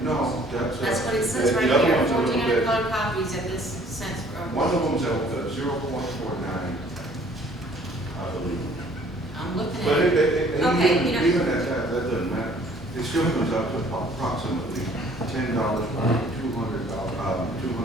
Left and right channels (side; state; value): both; normal; correlation 0.57